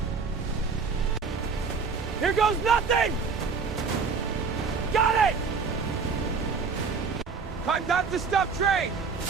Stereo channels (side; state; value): left; quieter; 5.1 dB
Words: Here goes nothing! Got it! Time not to stop train!